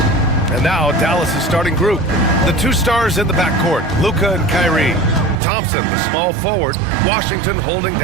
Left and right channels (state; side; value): drops out; left; at 5.4 s